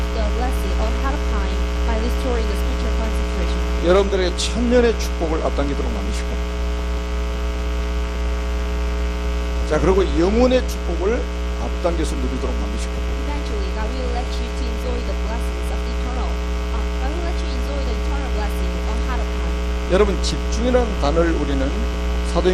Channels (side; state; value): both; identical; correlation 1.00